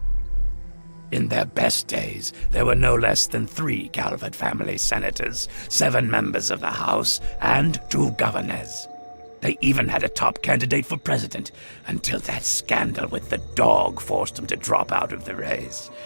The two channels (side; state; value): both; inverted; correlation -1.00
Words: In their best days, there were no less than 3 Calvert family senators, 7 members of the House, and 2 governors. They even had a top candidate for president, until that scandal with the dog forced him to drop out of the race.